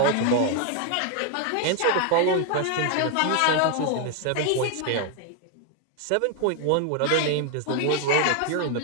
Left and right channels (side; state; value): both; different; correlation 0.01